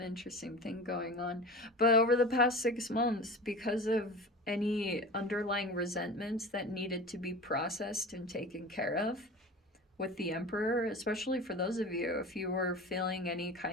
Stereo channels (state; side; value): normal; both; correlation 0.35